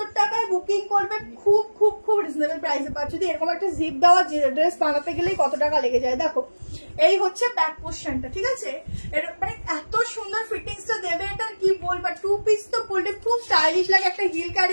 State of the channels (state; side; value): inverted; both; correlation -1.00